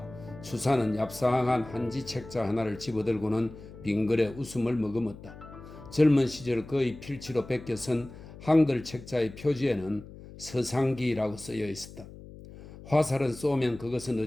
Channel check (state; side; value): noise; left; hum, 16 dB below the sound